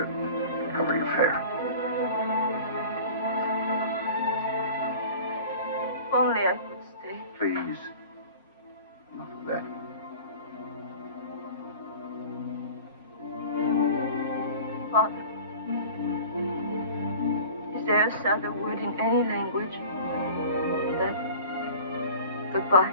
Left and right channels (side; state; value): both; inverted; correlation -0.41